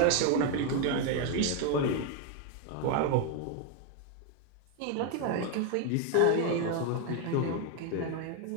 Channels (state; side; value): different; both; correlation 0.01